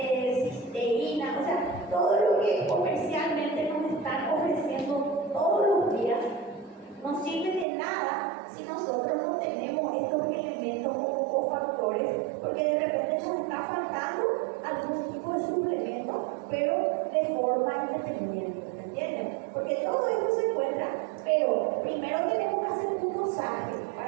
o sea, todo lo que comercialmente nos están ofreciendo todos los días, no sirve de nada si nosotros no tenemos estos elementos como cofactores, porque de repente nos está faltando algún tipo de suplemento, pero de forma independiente, ¿me entienden? Porque todo esto se encuentra, pero primero tenemos que hacer un dosaje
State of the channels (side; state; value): left; drops out; at 7.7 s